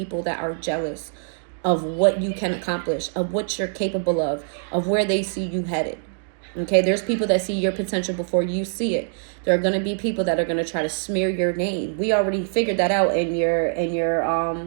that are jealous of what you can accomplish, of what you're capable of where they see you headed. Okay, there's people that see your potential before you see it. There are going to be people that are going to try to smear your name. We already figured that out in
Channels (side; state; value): left; silent; digital silence